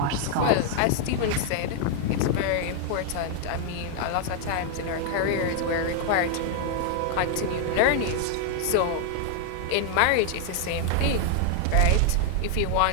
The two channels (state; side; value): different; both; correlation 0.00